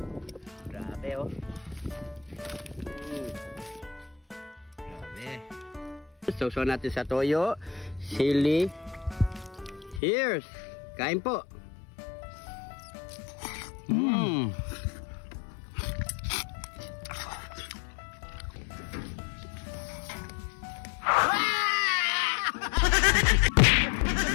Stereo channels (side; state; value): right; drops out; at 10.0 s